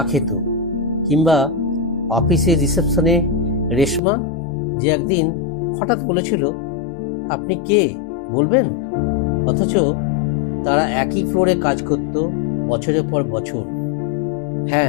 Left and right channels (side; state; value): right; drops out; at 4.0 s